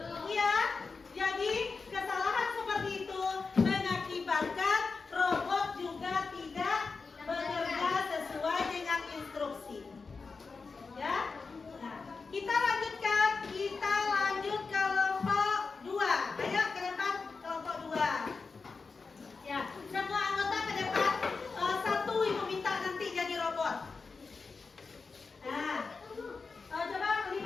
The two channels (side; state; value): right; quieter; 4.5 dB